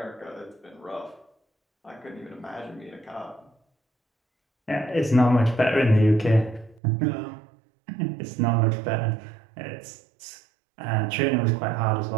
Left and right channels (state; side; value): drops out; left; at 6.8 s